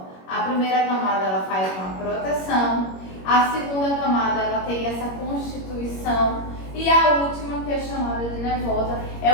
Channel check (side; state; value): right; late; 21 ms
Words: A primeira camada ela faz uma proteção, a segunda camada ela tem essa constituição e a última, que é chamada de nervosa, é